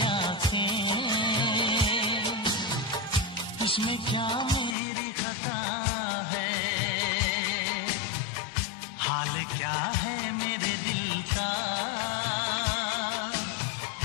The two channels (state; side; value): drops out; right; at 4.8 s